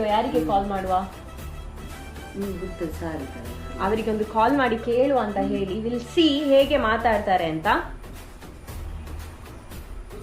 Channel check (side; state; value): both; identical; correlation 1.00